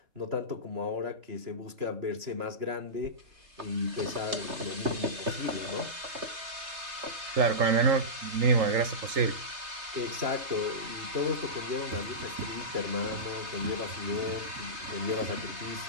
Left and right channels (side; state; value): left; late; 3.3 ms